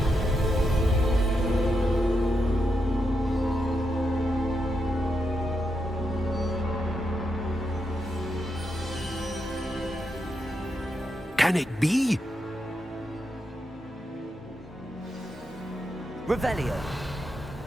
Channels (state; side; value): normal; both; correlation 0.84